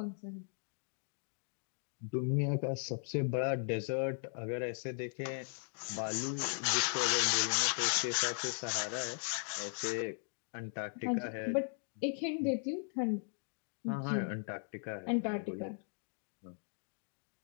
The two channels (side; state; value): right; silent; 53 dB below the other